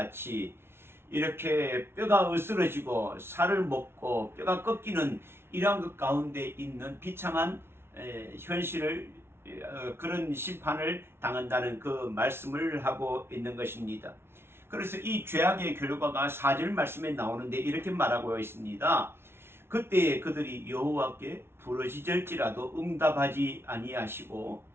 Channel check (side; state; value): left; late; 0.12 ms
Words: 이렇게 뼈가 으스러지고 살을 먹고 뼈가 꺾이는 이러한 것 가운데 있는 비참한 현실을 그런 심판을 당한다는 그 말씀을 하고 있는 것입니다. 그래서 이 죄악의 결과가 4절 말씀에 나오는데 이렇게 말하고 있습니다. 그때 그들이 여호와께 부르짖을지라도 응답하지 아니하시고